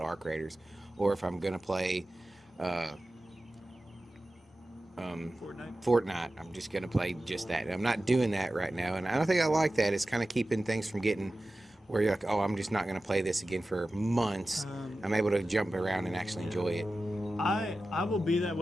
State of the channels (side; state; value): both; normal; correlation 0.95